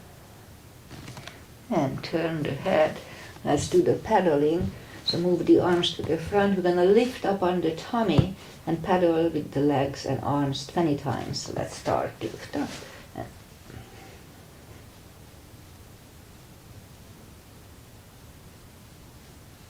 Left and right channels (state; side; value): identical; both; correlation 1.00